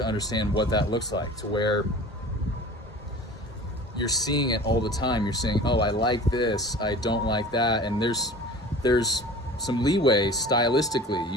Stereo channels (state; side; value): normal; both; correlation 0.40